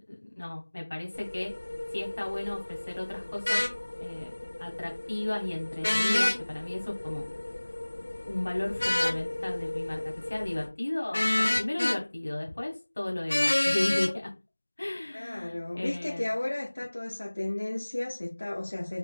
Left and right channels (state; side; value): inverted; both; correlation -1.00